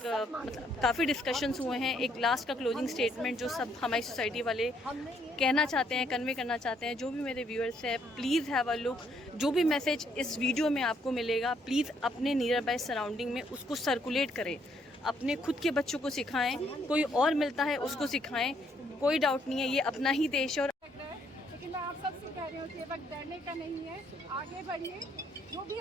काफ़ी डिस्कशंस हुए हैं। एक लास्ट का क्लोजिंग स्टेटमेंट जो सब हमारी सोसाइटी वाले कहना चाहते हैं, कन्वे करना चाहते हैं। जो भी मेरे व्यूअर्स हैं, प्लीज़ हैव अ लुक। जो भी मैसेज इस वीडियो में आपको मिलेगा, प्लीज़ अपने नियर बाय सराउंडिंग में उसको सर्कुलेट करें, अपने खुद के बच्चों को सिखाएं, कोई और मिलता है उसको सिखाएं। कोई डाउट नहीं है, ये अपना ही देश है। और लेकिन मैं आप सबसे कह रही हूँ कि वक्त डरने का नहीं है, आगे बढ़िए। जो भी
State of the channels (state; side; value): normal; both; correlation 0.70